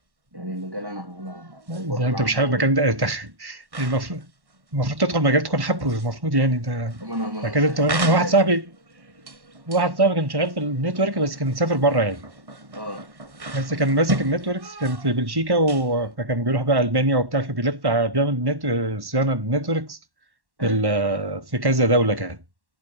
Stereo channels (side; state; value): left; late; 1.1 ms